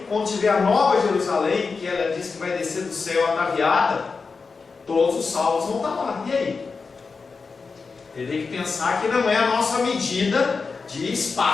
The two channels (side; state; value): right; quieter; 4.7 dB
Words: quando tiver a Nova Jerusalém, que ela diz que vai descer do céu ataviada, todos os salvos vão estar lá. E aí? Ele tem que pensar que não é a nossa medida de